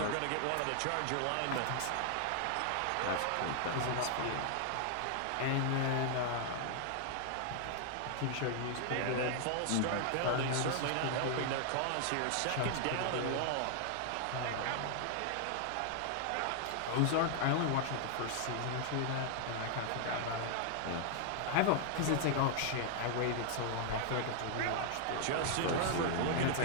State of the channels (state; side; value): different; both; correlation 0.00